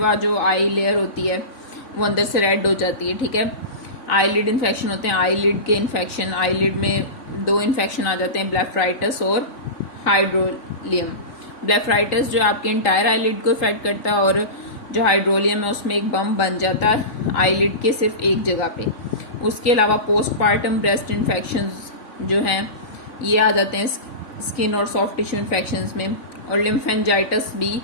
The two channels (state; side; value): late; right; 3.9 ms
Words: जो आई लेयर होती है वो अंदर से रेड हो जाती है। ठीक है, आईलिड इन्फेक्शन होते हैं, आईलिड के इन्फेक्शन, आईलिड में दो इन्फेक्शन आ जाते हैं, ब्लेफराइटिस और हाइड्रोलियम। ब्लेफराइटिस जो आपके इंटायर आईलिड को इफेक्ट करता है, और जो हाइड्रोलियम है उसमें एक बम बन जाता है आईलिड के सिर्फ एक जगह पे। उसके अलावा पोस्टपार्टम ब्रेस्ट इन्फेक्शंस जो हैं ये आ जाते हैं स्किन और सॉफ्ट टिश्यू इन्फेक्शंस में, और लिम्फेंजाइटिस भी